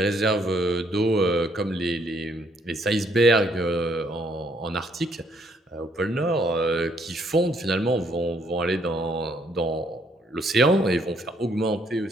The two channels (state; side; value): normal; both; correlation 0.69